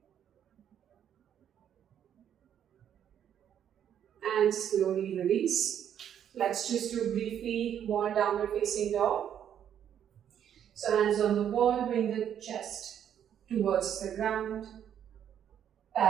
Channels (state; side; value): quieter; left; 9.5 dB